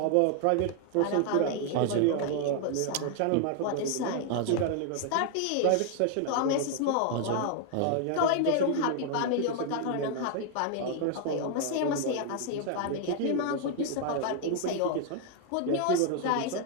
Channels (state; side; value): different; both; correlation 0.00